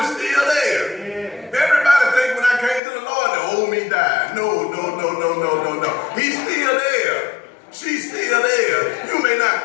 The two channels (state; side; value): drops out; right; at 2.8 s